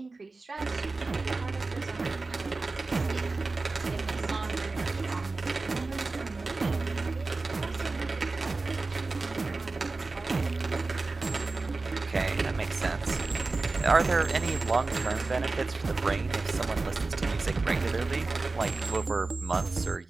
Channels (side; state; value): left; quieter; 3.6 dB